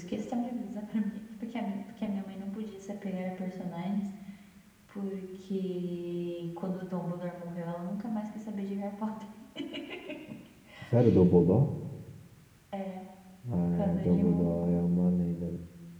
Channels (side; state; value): both; identical; correlation 1.00